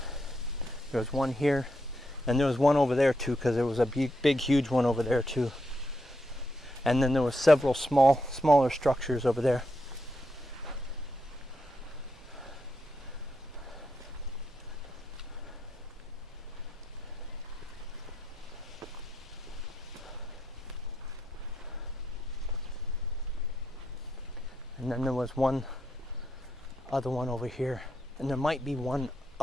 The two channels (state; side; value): normal; both; correlation 0.81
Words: There was one here. And there was one over there too, because there was a big, huge one over there too. And then there was several smaller structures over there. And then there was one other one over here. And there might be one